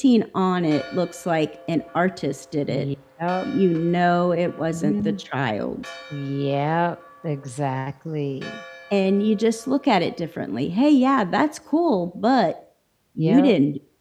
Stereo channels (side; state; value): both; identical; correlation 1.00